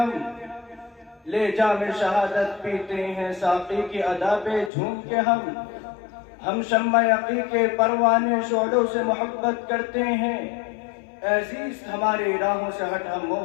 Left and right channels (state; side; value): drops out; right; at 4.7 s